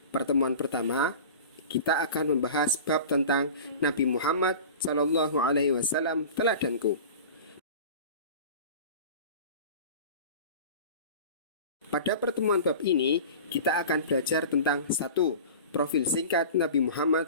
pertemuan pertama kita akan membahas bab tentang Nabi Muhammad SAW teladanku. Pada pertemuan bab ini, kita akan belajar tentang 1. Profil singkat Nabi Muhammad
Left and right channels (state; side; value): inverted; both; correlation -0.37